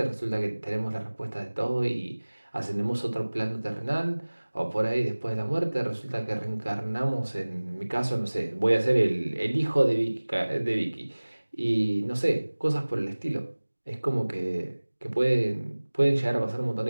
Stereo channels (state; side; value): inverted; both; correlation -1.00